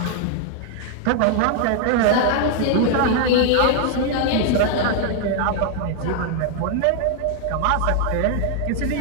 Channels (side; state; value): both; different; correlation 0.00